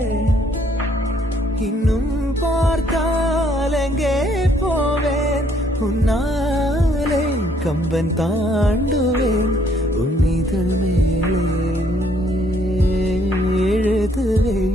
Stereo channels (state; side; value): normal; both; correlation 0.66